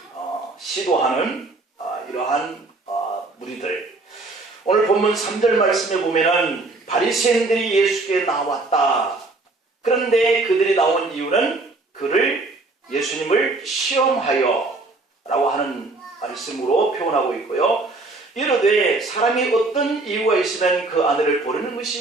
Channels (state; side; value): quieter; left; 3.3 dB